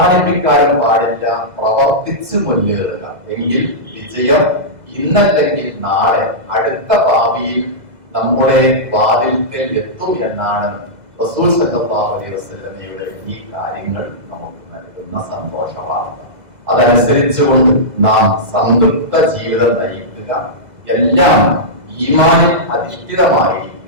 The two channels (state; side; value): late; left; 2.0 ms